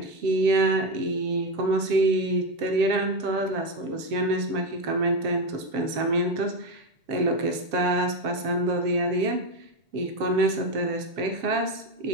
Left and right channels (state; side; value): late; left; 7.5 ms